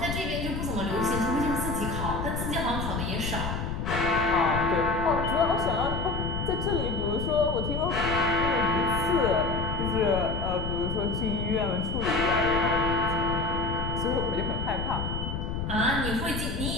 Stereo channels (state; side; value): noise; left; rumble, 3 dB below the sound